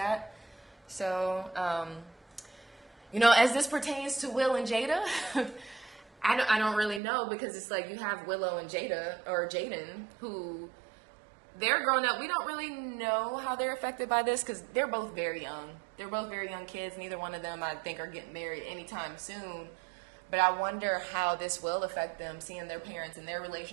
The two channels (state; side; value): drops out; left; at 7.0 s